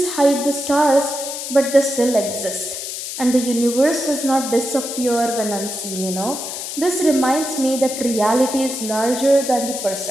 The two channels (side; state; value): left; noise; hiss, 7 dB below the sound